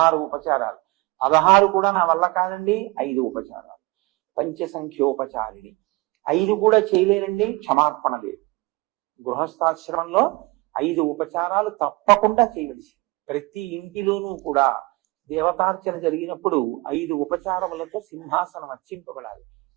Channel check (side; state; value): left; quieter; 24.0 dB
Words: ఉపచారాలు, 16 కూడా నా వల్ల కాదండి 5 ఉపచారాలు, పంచసంఖ్యోపచారిణి 5 కూడా చేయలేనండి క్షమార్పణ లేదు. గృహస్థాశ్రమంలో 5 ఉపచారాలు తప్పకుండా చేయవలసి. ప్రతి ఇంటిలోనూ కూడా దేవతార్చన జరిగినప్పుడు 5 ఉపచారములతో సింహాసనం అర్చింపబడాలి.